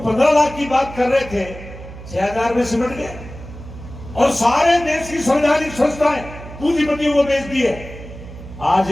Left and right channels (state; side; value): noise; right; hum, 14 dB below the sound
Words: लाख की बात कर रहे थे 6,000 में सिमट गए, और सारे देश की संवैधानिक संस्थाएं पूंजीपतियों को बेच दिए।